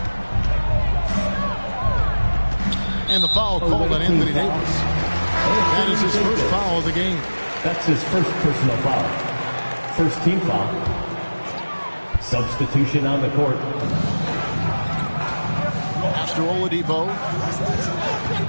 And the foul called on Anthony Davis. That is his first foul of the game. That's his first personal foul. First team foul. Substitution on the court. After Oladipo.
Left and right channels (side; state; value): both; inverted; correlation -1.00